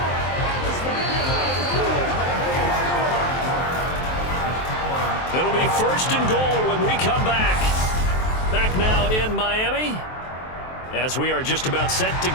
It'll be first and goal when we come back. Back now in Miami, as we are just about set to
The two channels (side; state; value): right; late; 23 ms